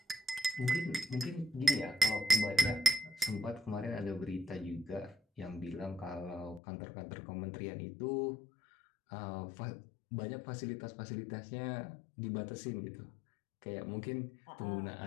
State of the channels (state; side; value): drops out; right; at 6.6 s